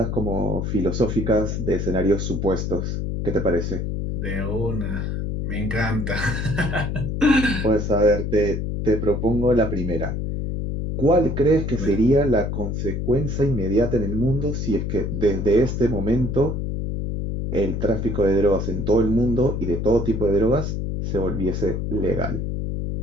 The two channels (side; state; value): left; noise; hum, 2 dB below the sound